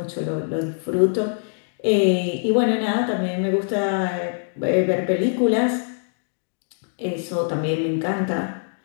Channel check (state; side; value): silent; right; digital silence